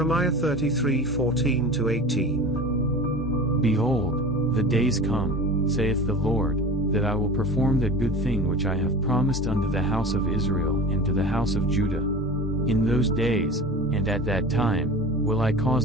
33:14-18. Behold, the days come, saith the Lord, that I will perform that good thing which I have promised unto the house of Israel and to the house of Judah. In those days, and at that time, will I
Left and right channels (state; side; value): normal; both; correlation 0.35